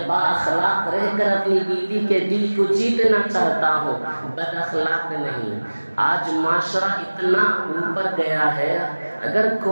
با اخلاق رہ کر اپنی بیوی کے دل کو جیتنا چاہتا ہوں، بد اخلاق نہیں۔ آج معاشرہ اتنا اوپر گیا ہے، اگر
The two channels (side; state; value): both; inverted; correlation -1.00